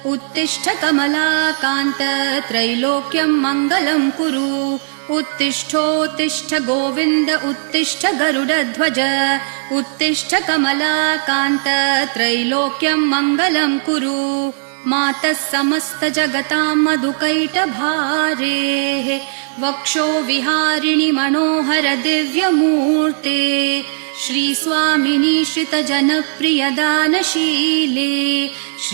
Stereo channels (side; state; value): left; silent; 61 dB below the other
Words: उत्तिष्ठ कमलाकान्त त्रैलोक्यं मङ्गलं कुरु उत्तिष्ठोत्तिष्ठ गोविन्द उत्तिष्ठ गरुडध्वज उत्तिष्ठ कमलाकान्त त्रैलोक्यं मङ्गलं कुरु मातः समस्त जगतां मधुकैटभारेः वक्षो विहारिणि मनोहर दिव्यमूर्ते श्रीस्वामिनि श्रितजनप्रियदानशीले